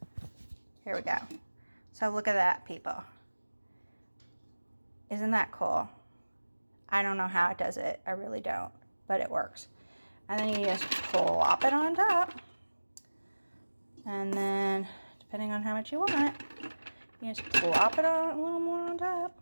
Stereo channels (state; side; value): inverted; both; correlation -1.00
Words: here we go. So look at that, people. Isn't that cool? I don't know how it does it. I really don't, but it works. And then you just plop it on top. And then, depending on how much you want, you just plop it on a little more on top.